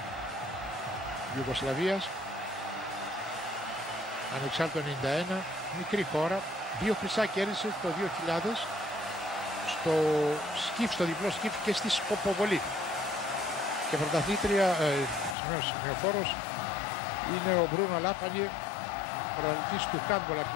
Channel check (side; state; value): right; drops out; at 15.4 s